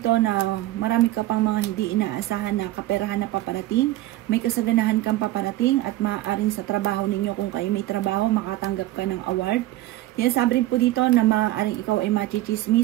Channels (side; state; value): left; quieter; 16.0 dB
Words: na marami ka pang mga hindi inaasahan na kaperahan na paparating. May kasaganahan kang paparating at maaaring sa trabaho ninyo, kung kayo may trabaho, makatanggap ka ng award. Yan, sabi rin po dito na maaaring ikaw ay